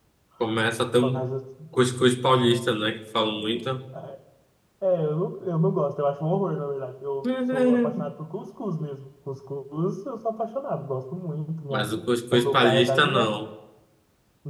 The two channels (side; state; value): both; identical; correlation 1.00